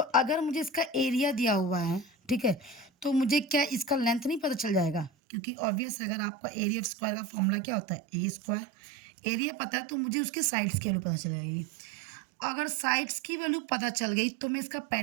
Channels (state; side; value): drops out; left; at 5.1 s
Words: मुझे इसका एरिया दिया हुआ है, ठीक है, तो मुझे क्या इसका लेंथ नहीं पता चल जाएगा? क्योंकि ऑब्वियस अगर आपका एरिया ऑफ स्क्वायर का फॉर्मूला क्या होता है? ए स्क्वायर। एरिया पता है तो मुझे उसके साइड्स की वैल्यू पता चल जाएगी। अगर साइड्स की वैल्यू पता चल गई तो मैं इसका